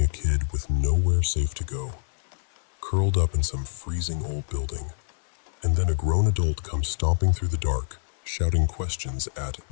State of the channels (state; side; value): silent; right; digital silence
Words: a kid with nowhere safe to go, curled up in some freezing old building, and then a grown adult comes stomping through the dark, shouting questions at